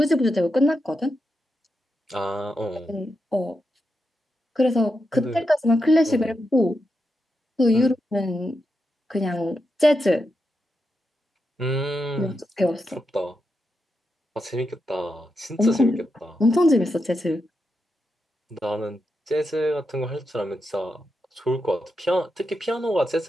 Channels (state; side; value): normal; both; correlation 0.86